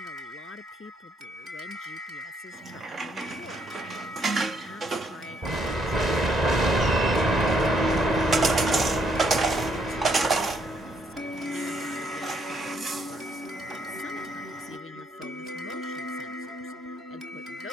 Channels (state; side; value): normal; both; correlation 0.71